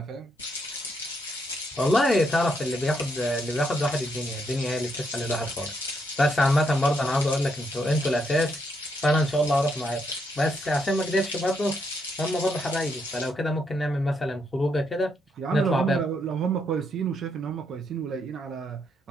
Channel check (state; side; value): normal; both; correlation 0.77